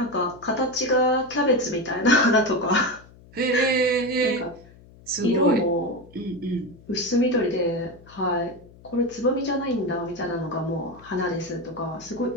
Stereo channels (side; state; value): left; noise; hum, 23 dB below the sound